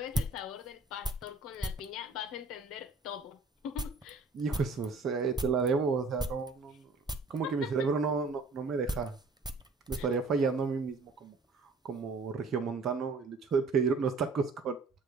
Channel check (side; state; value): left; quieter; 3.6 dB